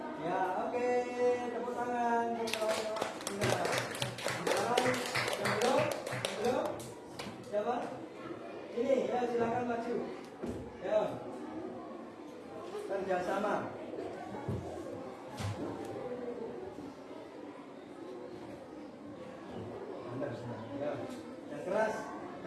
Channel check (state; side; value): identical; both; correlation 1.00